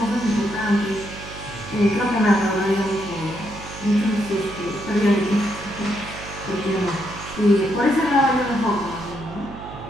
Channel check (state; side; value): noise; right; hum, 13 dB below the sound